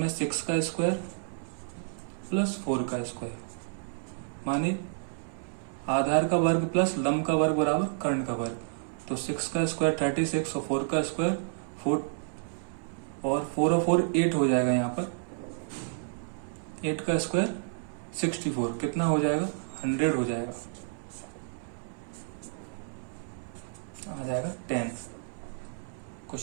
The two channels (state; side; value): silent; left; 58 dB below the other